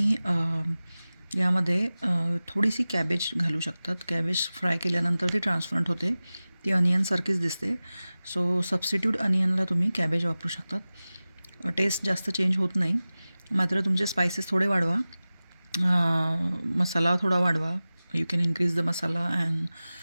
यामध्ये थोडीशी कॅबेज घालू शकतात. कॅबेज फ्राय केल्यानंतर ती ट्रान्सपरंट होते, ती अनियनसारखीच दिसते. सो सबस्टिट्यूट अनियनला तुम्ही कॅबेज वापरू शकतात. टेस्ट जास्त चेंज होत नाही. मात्र तुमचे स्पायसेस थोडे वाढवा, मसाला थोडा वाढवा. You can increase the masala and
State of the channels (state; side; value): inverted; both; correlation -0.97